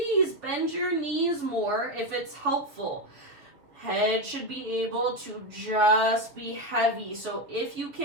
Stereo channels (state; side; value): late; left; 6.7 ms